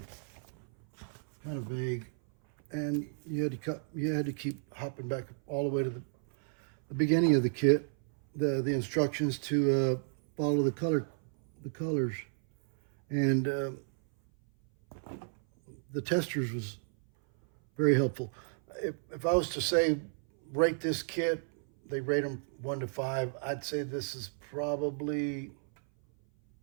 kind of vague, and you had to keep hopping back all the way to the beginning of the kit, the instructions to follow the colors, and the Testors was very helpful. If I was to say rate this kit, they rate them 1 to 5. I'd say this is probably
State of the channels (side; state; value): left; silent; 56 dB below the other